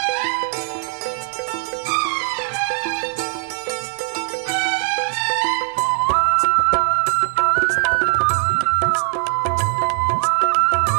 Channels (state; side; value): silent; left; digital silence